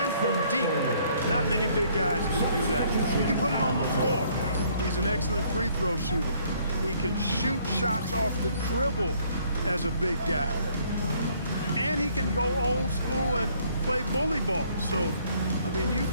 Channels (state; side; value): inverted; both; correlation -0.63